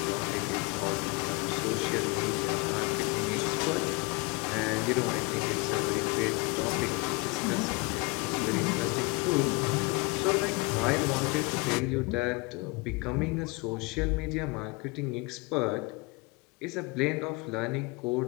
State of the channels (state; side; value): quieter; right; 26.7 dB